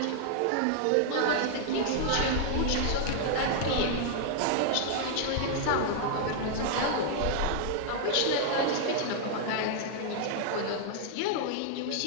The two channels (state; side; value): different; both; correlation -0.01